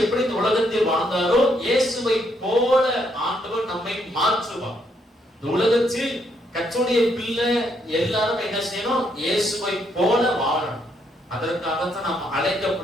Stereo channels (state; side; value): normal; both; correlation 0.74